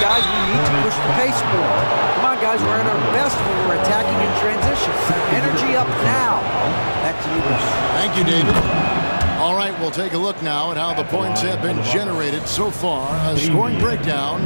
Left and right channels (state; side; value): inverted; both; correlation -1.00